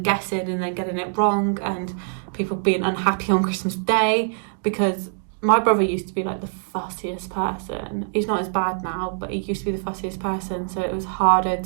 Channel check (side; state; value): left; silent; 60 dB below the other